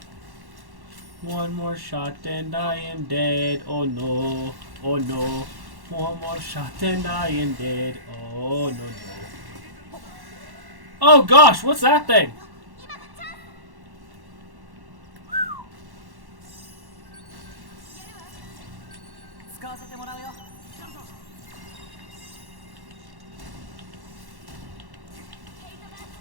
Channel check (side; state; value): left; late; 1.1 ms